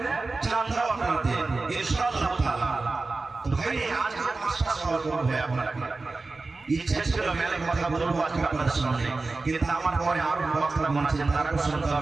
চাঁদাও আপনাদের ইনশাআল্লাহ তাআলা। তো ভাই আজকে পাঁচটা সওয়াল করব ভাই আপনাকে, ইচ্ছা ছিল মেলে কথা বলবো আজকে আপনাদের সামনে, কিন্তু আমার পরে আরো বক্তা মন আছে তারাও শুনতে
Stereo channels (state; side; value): quieter; left; 3.6 dB